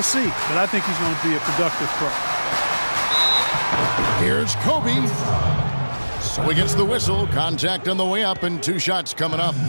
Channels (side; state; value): both; inverted; correlation -1.00